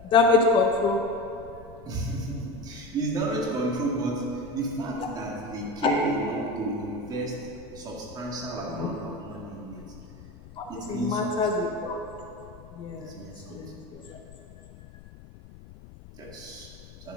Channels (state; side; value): noise; left; rumble, 18 dB below the sound